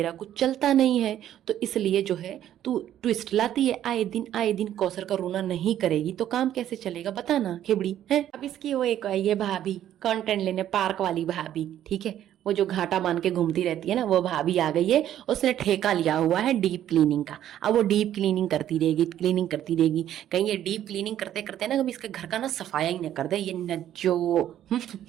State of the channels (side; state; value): left; quieter; 11.5 dB